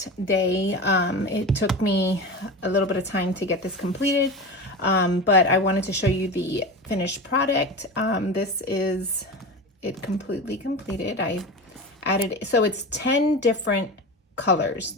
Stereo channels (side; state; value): both; normal; correlation 0.26